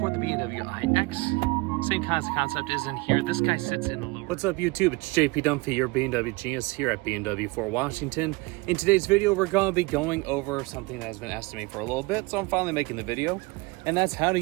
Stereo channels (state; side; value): quieter; left; 25.0 dB